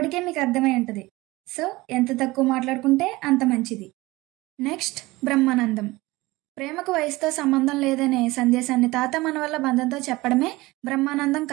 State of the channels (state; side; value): quieter; left; 20.5 dB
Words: మీకు అర్థమై ఉంటుంది. సో ఎంత తక్కువ మాట్లాడుకుంటే అంత మంచిది. నెక్స్ట్ బ్రహ్మానందం. ప్రేమకు వయసుతో సంబంధం లేదనే సందేశాన్ని తాత మనవల్ల బంధంతో చెప్పడమే బ్రహ్మానందం